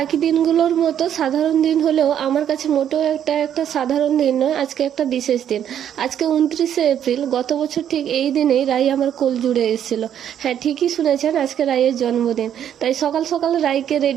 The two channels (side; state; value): left; quieter; 9.7 dB